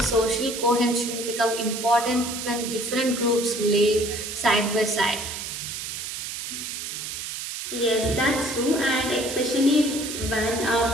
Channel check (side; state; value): right; noise; hiss, 6 dB below the sound